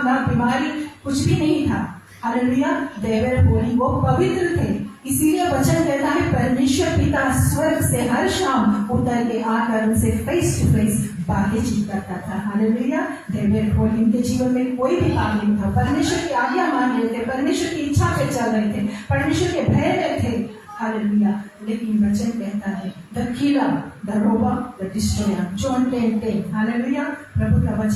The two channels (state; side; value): identical; both; correlation 1.00